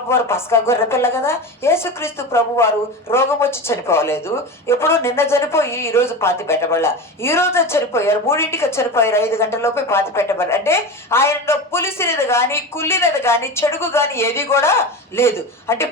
వారు పస్కా గొర్రె పిల్ల కదా. యేసుక్రీస్తు ప్రభు వారు రోగం వచ్చి చనిపోలేదు. ఎప్పుడో నిన్న చనిపోయి ఈ రోజు పాతి పెట్టబడలా. ఈ రోజు చనిపోయారు, 3ంటికి చనిపోయారు, 5 గంటలలోపే పాతి పెట్టబడి. అంటే ఆయనలో పులిసినది కానీ కుళ్ళినది కానీ చెడుగు కానీ ఏది కూడా లేదు. అంటే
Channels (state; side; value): normal; both; correlation 0.26